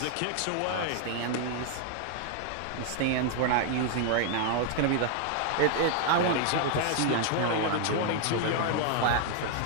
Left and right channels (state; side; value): different; both; correlation 0.00